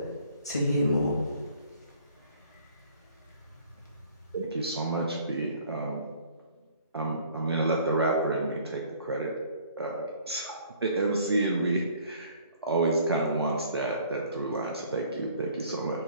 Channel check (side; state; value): both; inverted; correlation -0.55